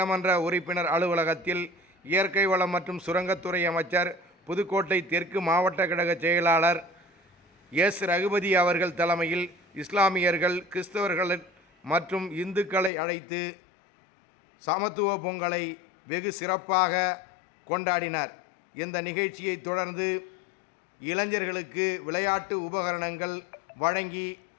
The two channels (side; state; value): right; drops out; at 12.9 s